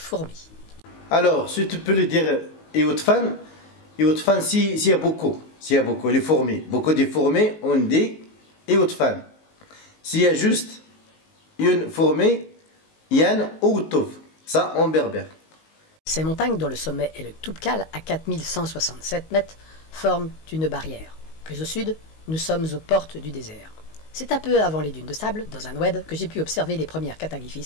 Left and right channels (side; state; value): right; late; 19 ms